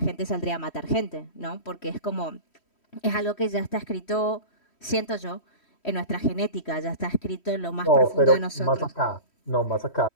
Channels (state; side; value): late; right; 3.1 ms